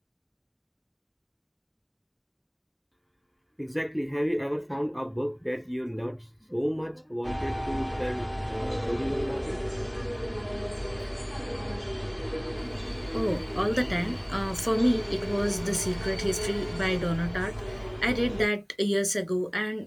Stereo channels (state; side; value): identical; both; correlation 1.00